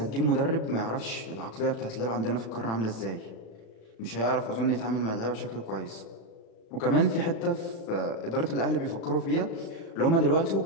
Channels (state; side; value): late; right; 36 ms